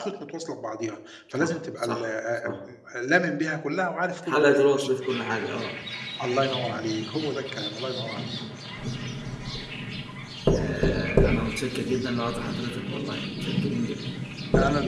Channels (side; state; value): both; identical; correlation 1.00